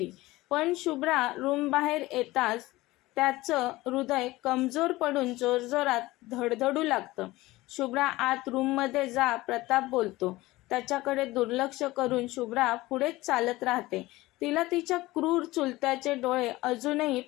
पण शुभ्रा रूम बाहेर येताच त्याचं हृदय कमजोर पडून जोरजोरात धडधडू लागतं. शुभ्रा आत रूममध्ये जा, प्रताप बोलतो. त्याच्याकडे दुर्लक्ष करून शुभ्रा पुढेच चालत राहते. तिला तिच्या क्रूर चुलत्याचे डोळे अजूनही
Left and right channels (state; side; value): quieter; right; 19.0 dB